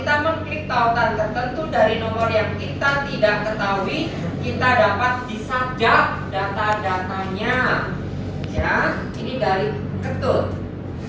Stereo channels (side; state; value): both; identical; correlation 1.00